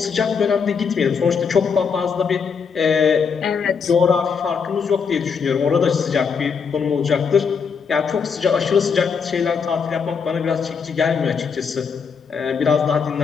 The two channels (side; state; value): right; quieter; 6.0 dB